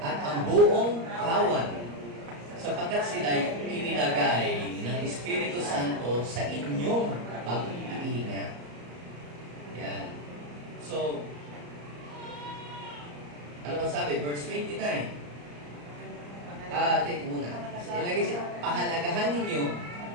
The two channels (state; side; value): late; left; 34 ms